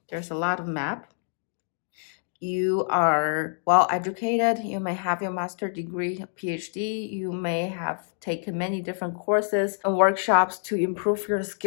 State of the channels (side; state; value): right; silent; digital silence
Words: There's a lot of map. You are well educated. You may have your master's degree, PhD. You may have taken many different courses and workshops to improve your